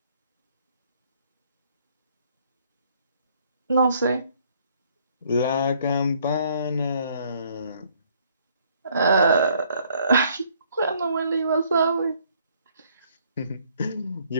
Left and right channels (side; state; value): both; inverted; correlation -0.64